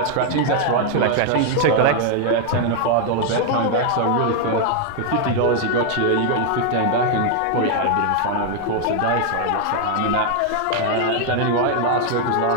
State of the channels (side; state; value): both; different; correlation 0.00